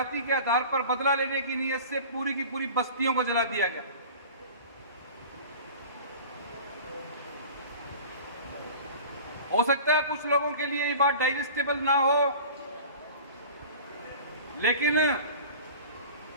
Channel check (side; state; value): both; inverted; correlation -0.39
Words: के आधार पर बदला लेने की नीयत से पूरी की पूरी बस्तियों को जला दिया गया। हो सकता है कुछ लोगों के लिए ये बात डाइजेस्टेबल ना हो, लेकिन